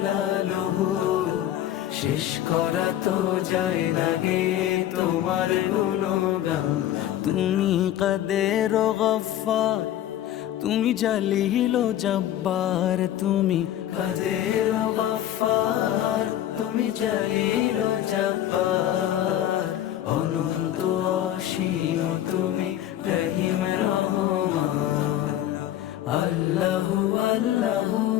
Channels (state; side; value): quieter; right; 12.1 dB